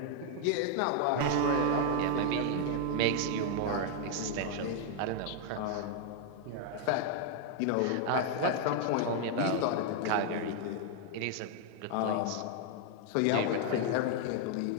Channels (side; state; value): both; different; correlation 0.00